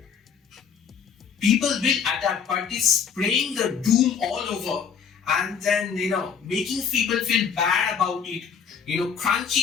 People will adapt, but it's spraying the doom all over and then, making people feel bad about it,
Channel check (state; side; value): quieter; right; 6.9 dB